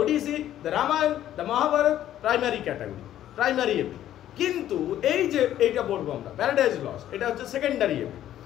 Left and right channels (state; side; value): quieter; right; 12.0 dB